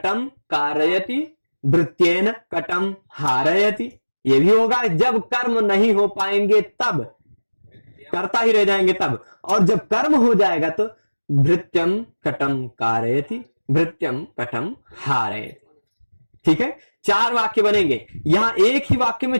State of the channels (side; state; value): both; inverted; correlation -1.00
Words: कारयति, भृत्येन कटम हारयति, ये भी होगा। जब कर्म नहीं हो पाएंगे तब, कर्ता ही रह जाएंगे तब, और जब कर्म हो जाएगा तो भृत्यम कटम कारयति, भृत्यम कटम हारयति। ठीक है, 4 वाक्य बनेंगे। यहां एक ही वाक्य में